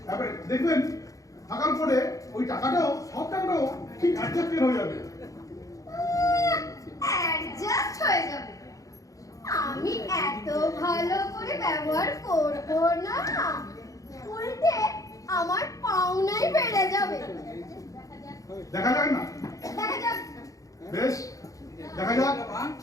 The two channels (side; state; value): right; late; 0.16 ms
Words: এবারে দেখবেন থাকার পরে ওই টাকাটাও, সব টাকাটাও ঠিক অ্যাডজাস্টেড হয়ে যাবে। অ্যাডজাস্ট হয়ে যাবে? আমি এত ভালো করে ব্যবহার করব না, উল্টে আমার পাওনাই বেড়ে যাবে। দেখা যাক না? দেখা যাক। বেশ, দেখা যাক।